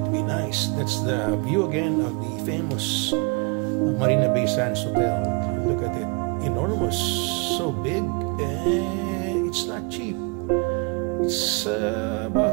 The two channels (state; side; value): quieter; left; 32.4 dB